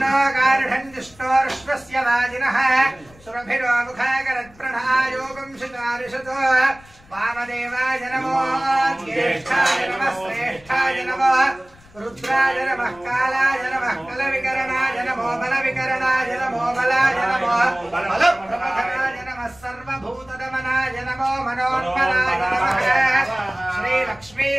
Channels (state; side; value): noise; left; rumble, 25 dB below the sound